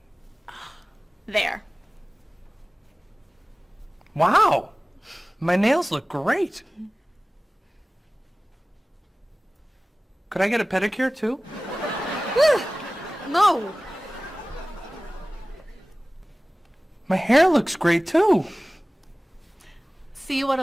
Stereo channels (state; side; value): normal; both; correlation 0.98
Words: There. Wow! My nails look great. Could I get a pedicure too? No. My hair looks great too. See what